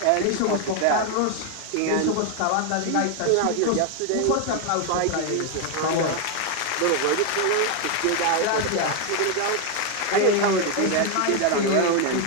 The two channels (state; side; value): different; both; correlation 0.01